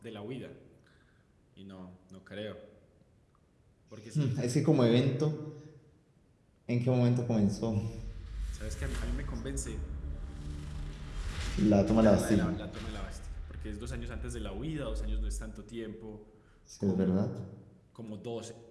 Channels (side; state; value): both; identical; correlation 1.00